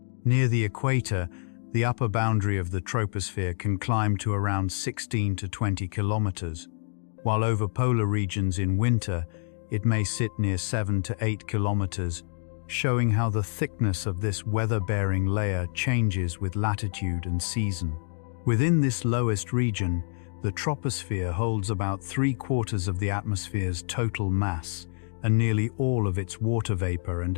Near the equator, the upper boundary of the troposphere can climb to around 16 to 20 kilometers, while over polar regions in winter, it may sit near 7 to 8 kilometers, showing how the thickness of this weather-bearing layer changes with latitude and season. Within this lowest region, the troposphere holds about 3/4 of the atmosphere's total mass and nearly all of its water vapor and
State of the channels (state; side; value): silent; right; 59 dB below the other